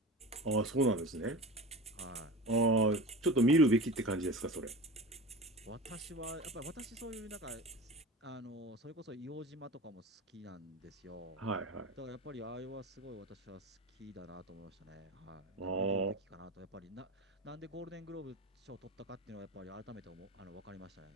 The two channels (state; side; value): normal; both; correlation 0.32